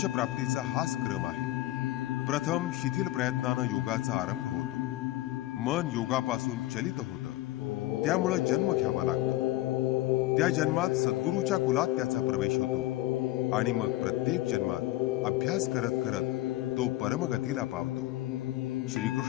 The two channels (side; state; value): right; quieter; 17.0 dB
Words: प्राप्तीचा हाच क्रम आहे. प्रथम शिथिल प्रयत्नानं योगाचा आरंभ होतो. मन योगापासून चलित होतं, त्यामुळे जन्म घ्यावा लागतो. त्या जन्मात सद्गुरूच्या कुलात त्याचा प्रवेश होतो आणि मग प्रत्येक जन्मात अभ्यास करत करत तो परमगतीला पावतो.